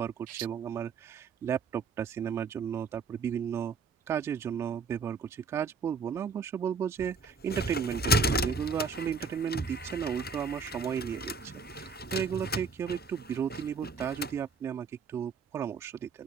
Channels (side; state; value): left; quieter; 4.8 dB